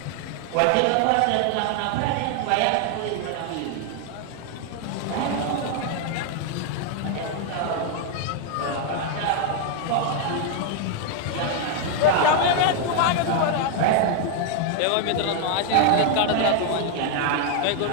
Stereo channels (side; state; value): both; different; correlation 0.00